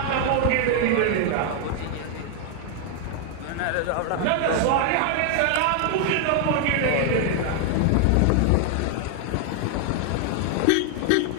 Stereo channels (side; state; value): both; different; correlation 0.00